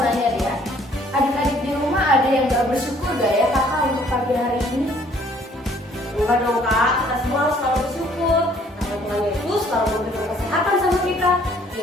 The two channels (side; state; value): both; normal; correlation 0.60